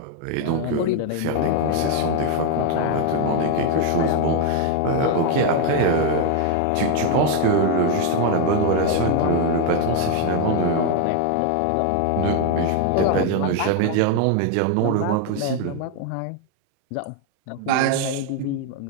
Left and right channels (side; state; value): both; different; correlation 0.01